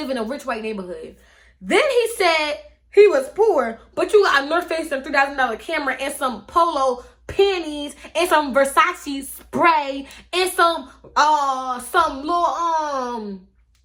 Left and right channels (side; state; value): both; identical; correlation 1.00